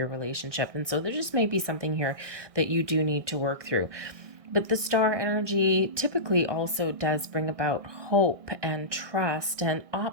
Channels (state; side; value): late; left; 1.6 ms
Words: relationship. And so there just may be something here that you do need to work through. But the star energy typically also does bring about hope and trust and